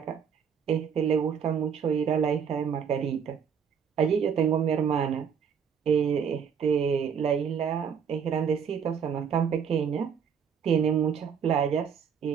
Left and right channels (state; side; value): quieter; left; 7.2 dB